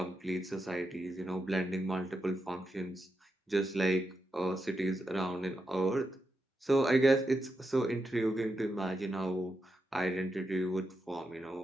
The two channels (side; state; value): both; normal; correlation 0.86